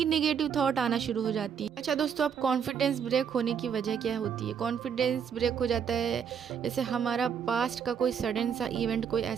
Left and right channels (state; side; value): quieter; left; 7.5 dB